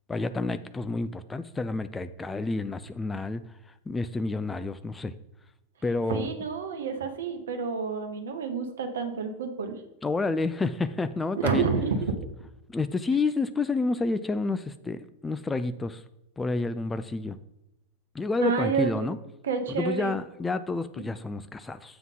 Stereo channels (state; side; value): normal; both; correlation 0.50